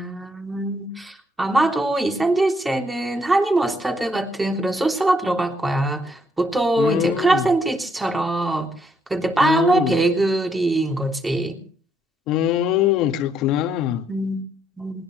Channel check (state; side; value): normal; both; correlation 0.72